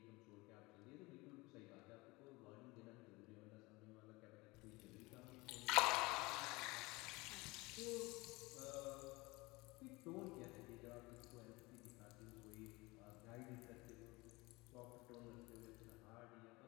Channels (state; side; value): quieter; right; 23.2 dB